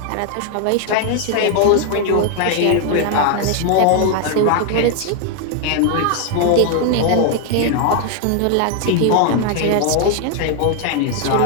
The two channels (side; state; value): both; different; correlation 0.00